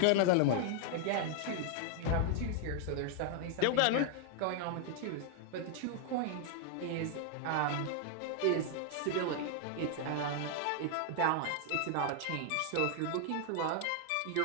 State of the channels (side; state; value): both; different; correlation 0.00